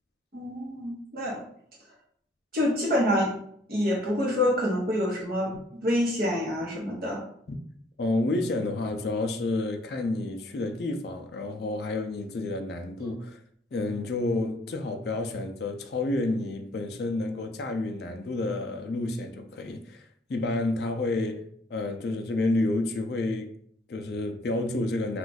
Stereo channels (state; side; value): normal; both; correlation 0.62